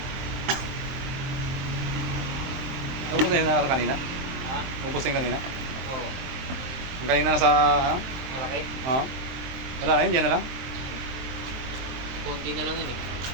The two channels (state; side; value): late; left; 23 ms